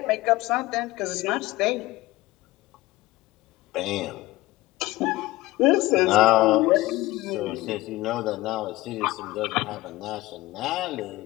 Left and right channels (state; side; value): quieter; right; 18.6 dB